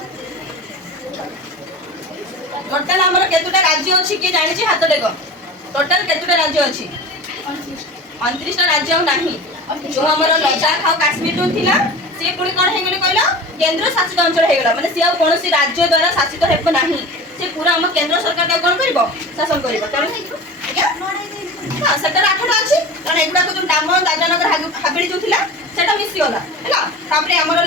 टोटाल आमर केतुटा राज्य अछि के जानि छी हाथ देखो टोटाल केतुटा राज्य अछि 29 टा राज्य नाही जो हमर लद्दाख और काश्मीर जो थिला से पुणी कोन हे गेले कहलो केंद्र शासित अंचल हे गेला माने से आ कोनोसी राज्य द्वारा शासित हेब नाही से पूरा हम केंद्र सरकार का कोन करबो शासन करबो तने हां सेटर 8 टा अछि कारण एगुडा को जो नाम दादानगर हाबिली जो थिला सेटा मिसी होला हैला तापरे हमर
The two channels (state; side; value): normal; both; correlation 0.34